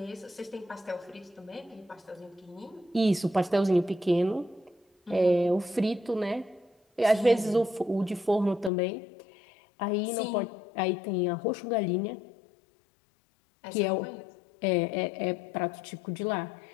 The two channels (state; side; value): drops out; right; at 8.7 s